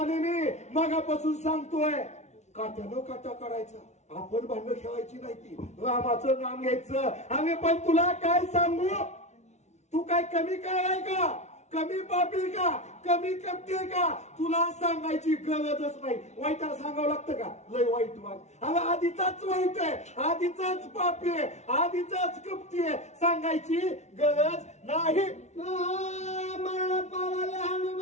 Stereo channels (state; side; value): late; right; 0.32 ms